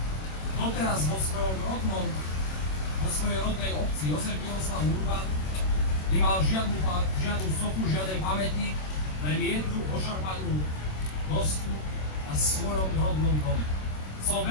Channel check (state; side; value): late; right; 26 ms